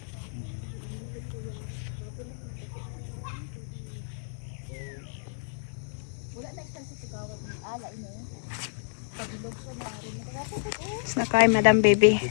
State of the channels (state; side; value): silent; right; digital silence